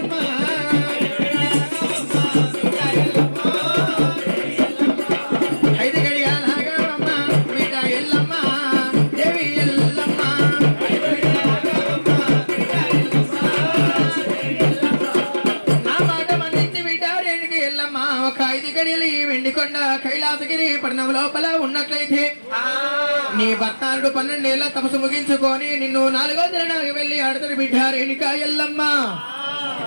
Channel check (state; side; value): inverted; both; correlation -1.00